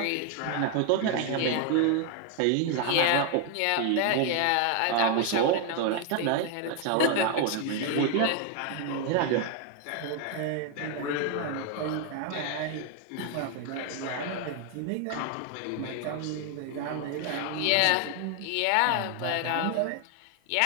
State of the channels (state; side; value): different; both; correlation 0.01